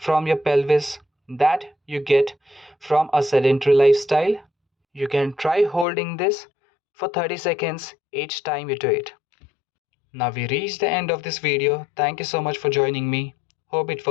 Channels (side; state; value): right; drops out; at 5.9 s